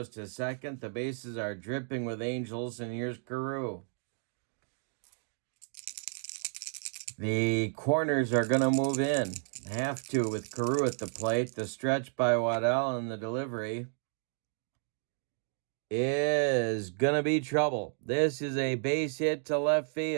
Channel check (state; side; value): silent; left; 56 dB below the other